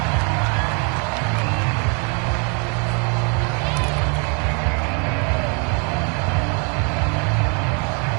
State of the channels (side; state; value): left; quieter; 36.2 dB